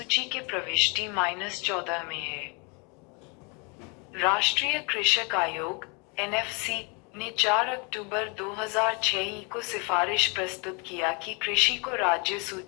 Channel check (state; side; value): quieter; right; 32.6 dB